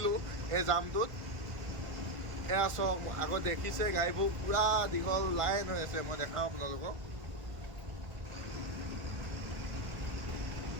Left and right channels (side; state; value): left; late; 1.5 ms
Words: এই জামটোত। এয়া চাওক, আগত দেখিছে গাড়ীবোৰ পূৰা দীঘল লাইন হৈ আছে। মই দেখাওঁ আপোনালোকক।